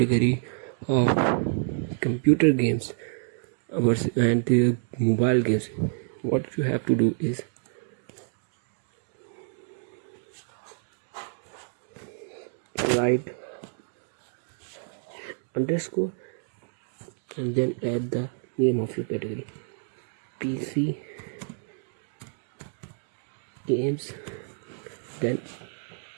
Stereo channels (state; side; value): silent; left; digital silence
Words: of computer games and mobile games, what you have to do is write underscore and then add the name of your category, PC games, then